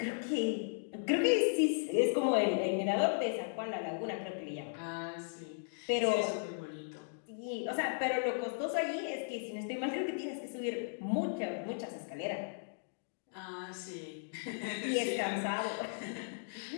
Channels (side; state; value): right; silent; digital silence